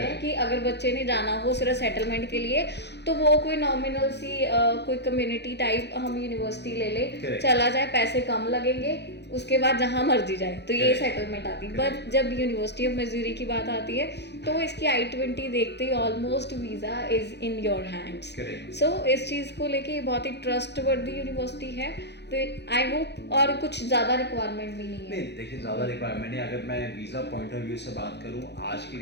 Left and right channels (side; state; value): right; late; 0.50 ms